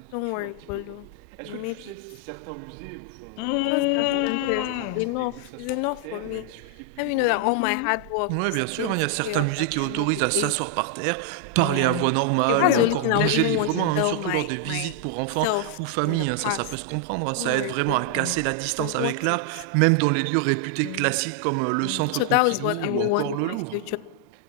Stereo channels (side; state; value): both; different; correlation 0.00